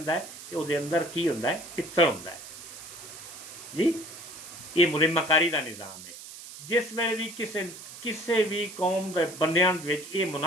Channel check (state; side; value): noise; right; hiss, 14 dB below the sound